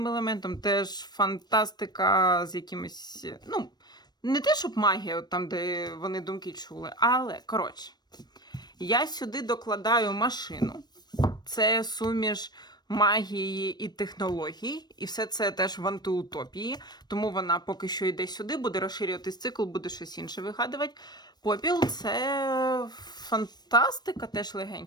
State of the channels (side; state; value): right; late; 0.20 ms